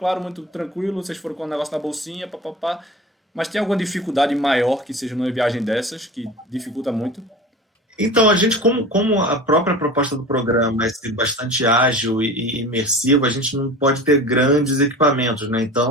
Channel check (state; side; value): normal; both; correlation 0.35